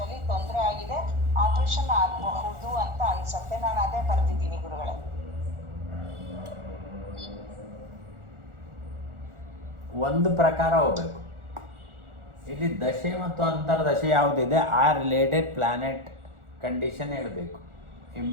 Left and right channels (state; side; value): late; left; 1.4 ms